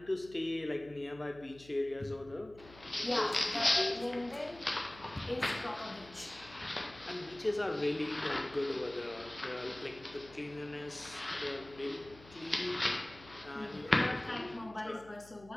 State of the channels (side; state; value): left; noise; hum, 21 dB below the sound